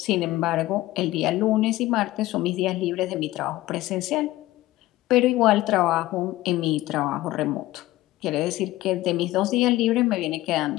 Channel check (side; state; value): right; quieter; 16.9 dB